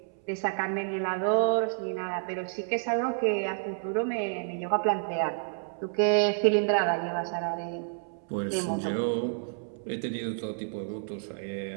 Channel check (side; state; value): left; silent; 58 dB below the other